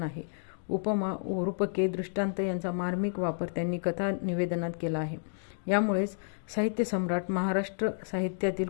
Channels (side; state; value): right; silent; digital silence